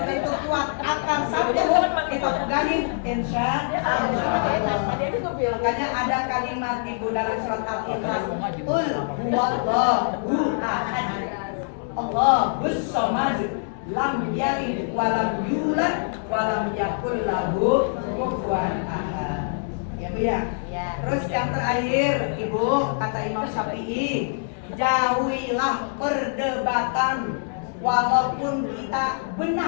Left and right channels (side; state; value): right; silent; digital silence